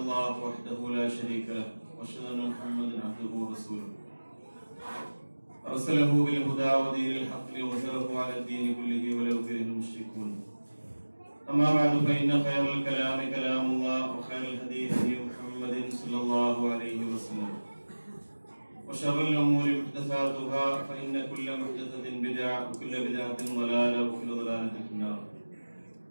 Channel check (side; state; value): both; inverted; correlation -1.00